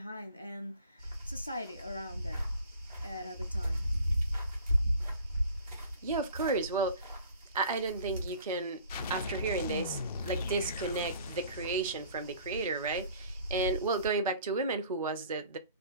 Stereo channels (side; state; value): both; inverted; correlation -0.48